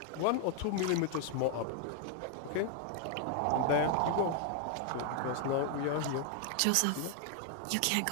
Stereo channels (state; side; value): different; both; correlation 0.00